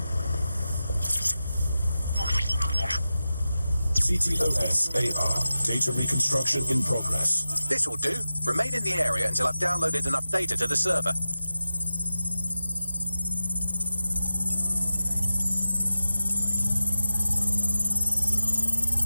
CTOS AR. Data reconstruction in progress. This will do. Remain in the area until I've downloaded enough data to the server.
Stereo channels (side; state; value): both; inverted; correlation -0.93